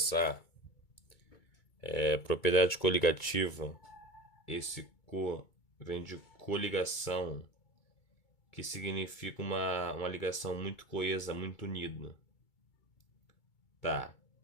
propriedade coligativa, esse co vem de coligação, que significa uma ligação muito coesa, muito unida. Tá.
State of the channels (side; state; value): right; late; 2.3 ms